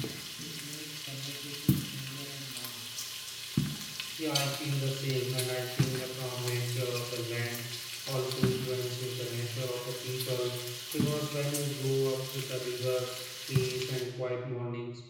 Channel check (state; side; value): identical; both; correlation 1.00